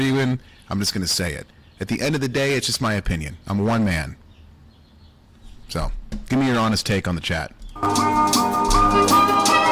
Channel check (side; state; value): both; identical; correlation 1.00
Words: with, I'm just going to say it. At the end of the day, it's just my opinion. I'm one man. So, give me your honest take on the chat.